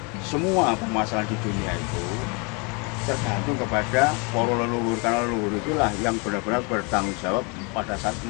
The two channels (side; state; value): right; quieter; 31.8 dB